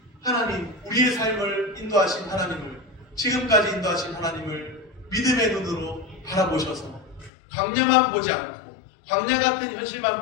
하나님, 우리의 삶을 인도하신 하나님을 지금까지 인도하신 하나님을 믿음의 눈으로 바라보셔서 광야만 보지 않고 광야 같은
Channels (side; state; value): right; drops out; at 7.3 s